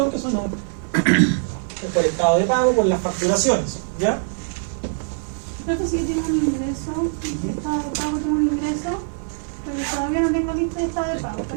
que son por estado de pago, por las facturaciones. ¿Ya? creo que sí que tiene un ingreso, estado de pago tiene un ingreso, pero todavía no tengo lista de estado de pago,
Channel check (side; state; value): left; silent; digital silence